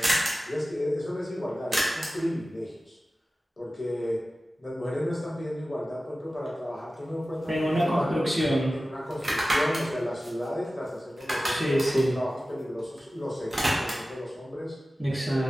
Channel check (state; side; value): normal; both; correlation 0.96